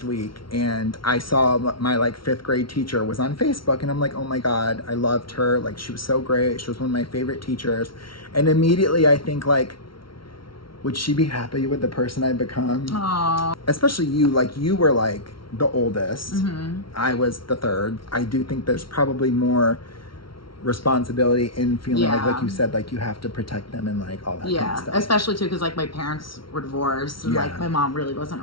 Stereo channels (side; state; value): right; late; 0.74 ms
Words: week, and I saw my like 5th grade teacher was on Facebook, and I'm like, oh my God, I loved her. Like she was so great. She was one of my favorite teachers. And immediately I think like, would she be happy with the person I've become? Aww. Especially you, like you were like the oldest. I was the 3rd. I do think there's probably more responsibility in feeling like you said, like you have to protect them and like all that kind of stuff. Especially too because like my parents were divorced and like my mom really wasn't